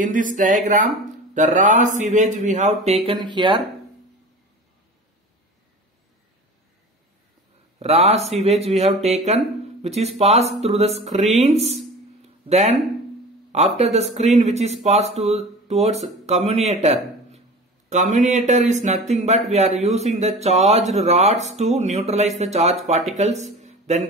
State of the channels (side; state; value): both; normal; correlation 0.36